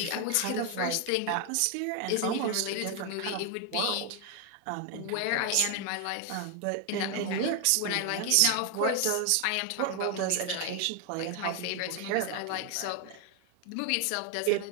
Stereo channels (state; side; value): different; both; correlation 0.01